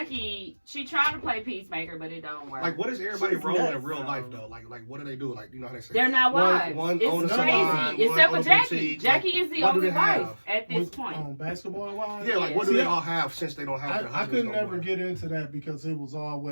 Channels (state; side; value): inverted; both; correlation -1.00